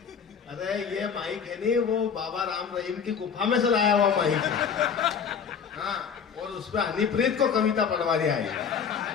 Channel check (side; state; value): right; quieter; 6.8 dB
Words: अरे ये माइक है नहीं, वो बाबा राम रहीम की गुफा में से लाया हुआ माइक है। हाँ, और उसपे हनीप्रीत को कविता पढ़वा दिया है।